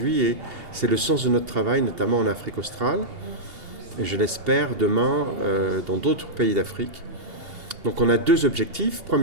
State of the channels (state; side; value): late; left; 2.8 ms